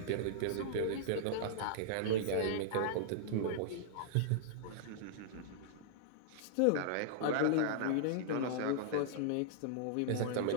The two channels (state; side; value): different; both; correlation -0.01